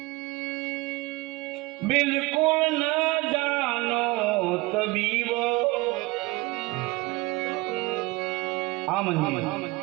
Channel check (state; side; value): quieter; left; 22.6 dB